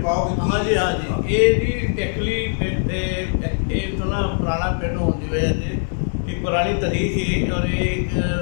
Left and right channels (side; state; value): right; silent; 63 dB below the other